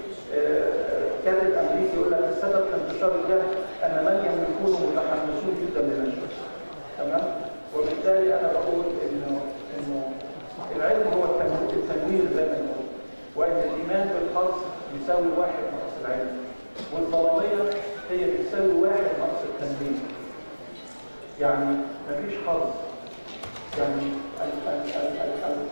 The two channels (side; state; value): both; inverted; correlation -1.00